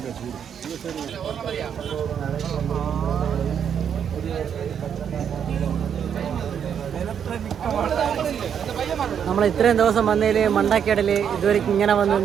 നമ്മൾ ഇത്രയും ദിവസം വന്നതിൽ മണ്ടക്കേടൽ ഇതുവരെ ഇങ്ങനെ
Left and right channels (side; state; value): left; quieter; 8.1 dB